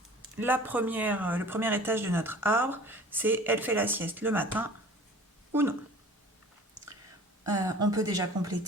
le premier étage de notre arbre, c'est elle fait la sieste le matin ou non. On peut déjà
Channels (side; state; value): both; normal; correlation 0.45